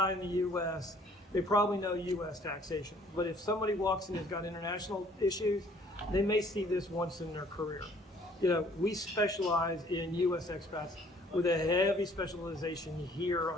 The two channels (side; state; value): both; normal; correlation 0.58